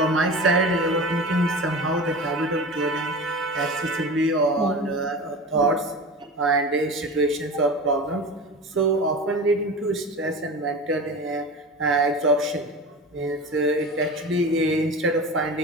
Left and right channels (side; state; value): both; normal; correlation 0.31